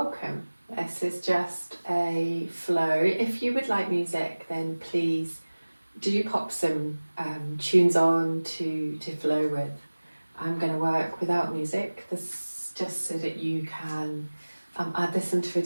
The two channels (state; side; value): inverted; both; correlation -1.00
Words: This is just a flow. If you would like music, then please do pop some tunes on to flow with. I'm going to work without music. This is just so that you can add this into a